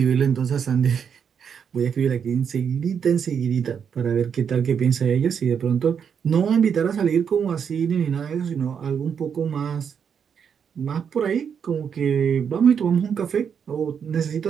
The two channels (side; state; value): left; quieter; 7.3 dB